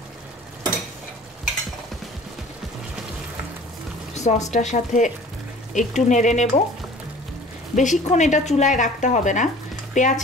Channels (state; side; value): normal; both; correlation 0.47